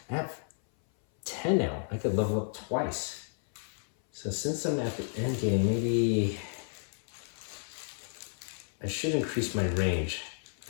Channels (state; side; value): silent; right; 56 dB below the other